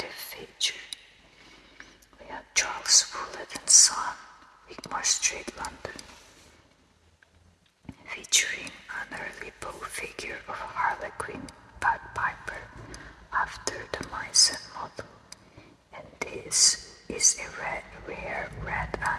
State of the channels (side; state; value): both; identical; correlation 1.00